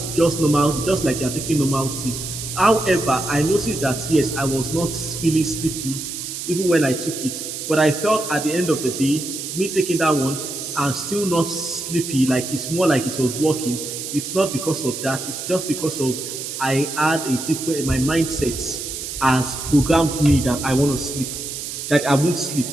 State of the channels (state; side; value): noise; right; hiss, 7 dB below the sound